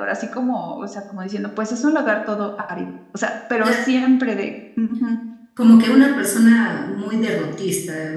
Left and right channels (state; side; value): identical; both; correlation 1.00